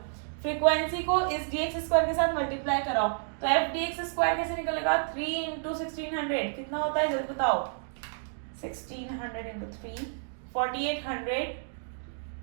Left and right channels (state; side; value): silent; left; digital silence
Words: फ्रीक्वेंसी को इस dx स्क्वायर के साथ मल्टीप्लाई कराओ, तो f dx स्क्वायर कैसे निकलेगा? 3 इंटू 1600 कितना होता है जल्दी बताओ? 1600 इंटू 3 4800।